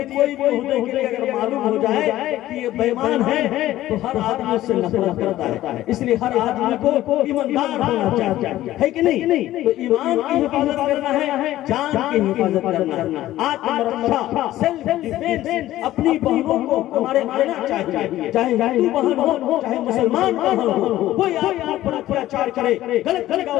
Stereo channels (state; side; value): quieter; right; 14.6 dB